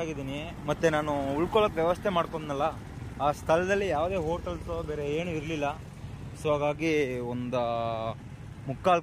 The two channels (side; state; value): both; identical; correlation 1.00